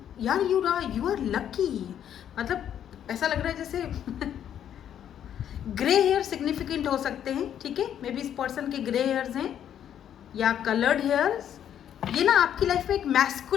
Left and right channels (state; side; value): quieter; right; 9.8 dB